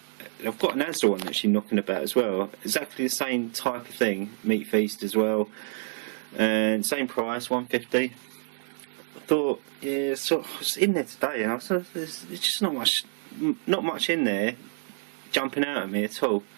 I've got an Asda one actually knocking about as well. Exactly the same type of thing, meat feast as well, and same price, £1.50. I thought, yeah, so I was in there today, and I thought there's just not much in there jumping out at me at all.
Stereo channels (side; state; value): left; silent; digital silence